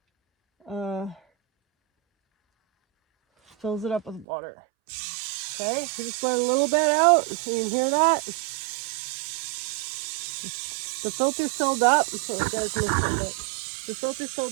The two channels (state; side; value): drops out; left; at 4.2 s